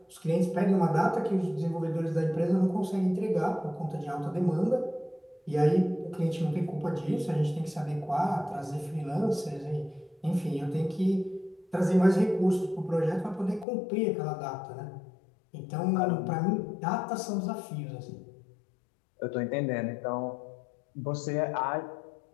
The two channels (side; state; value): right; drops out; at 13.7 s